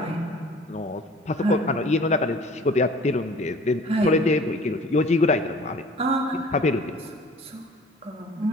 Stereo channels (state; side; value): normal; both; correlation 0.47